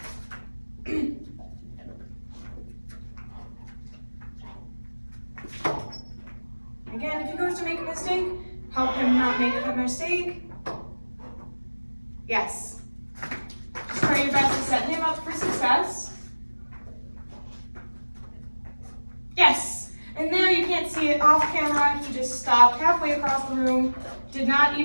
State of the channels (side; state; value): both; inverted; correlation -1.00